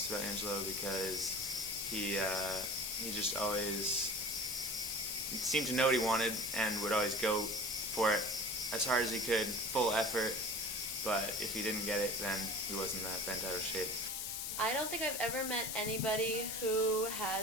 about Angelo, because he just always seemed to know what he wanted and would always go for it as hard as he could, full effort, but if he didn't get it, then he wasn't that bent out of shape. I don't think I've ever met anybody who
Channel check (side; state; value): left; noise; hiss, 3 dB below the sound